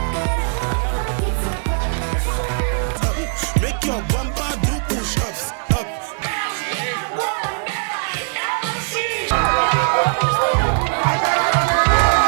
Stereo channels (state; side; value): silent; left; 66 dB below the other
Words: Make your bumper do push-ups up.